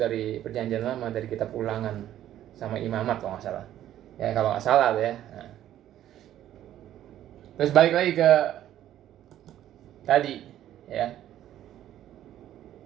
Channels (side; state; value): left; quieter; 12.1 dB